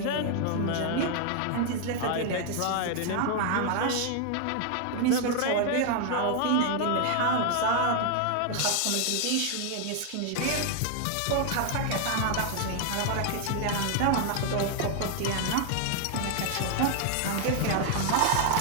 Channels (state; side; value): different; both; correlation 0.00